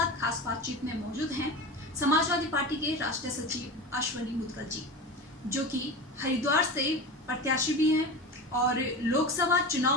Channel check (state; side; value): normal; both; correlation 0.28